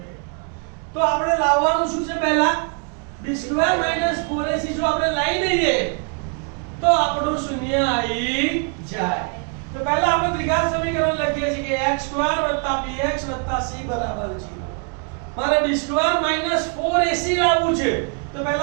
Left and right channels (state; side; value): quieter; left; 37.5 dB